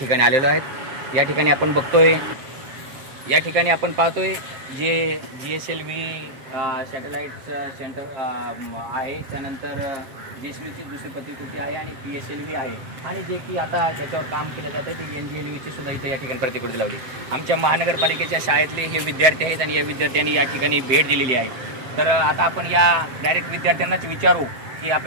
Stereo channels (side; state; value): left; late; 7.5 ms